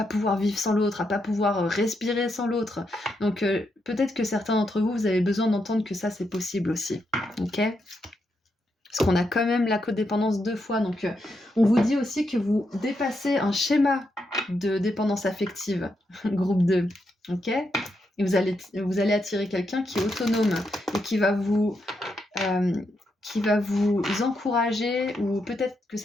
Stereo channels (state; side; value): normal; both; correlation 0.82